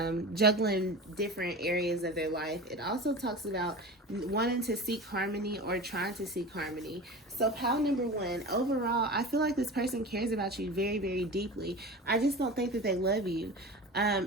different areas of their life. It also talks about wanting to seek harmony or trying to seek harmony. So pile number one, overall, I feel like this person cares about you very, very deeply. I just don't think that they love you.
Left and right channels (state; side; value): normal; both; correlation 0.32